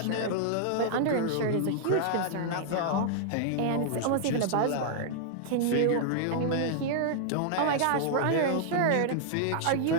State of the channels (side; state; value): both; different; correlation -0.01